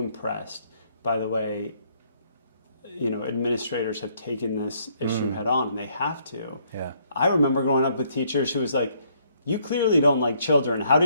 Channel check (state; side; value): inverted; both; correlation -0.68